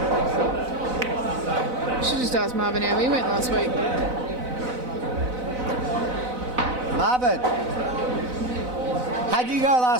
Should just ask Marvin how he went last week. Marvin, how'd you go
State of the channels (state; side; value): late; left; 4.0 ms